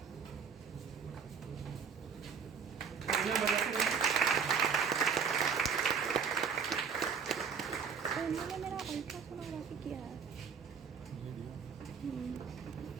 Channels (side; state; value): left; quieter; 6.4 dB